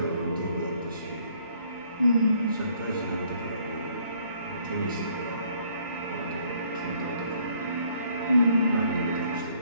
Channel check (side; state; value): both; inverted; correlation -0.64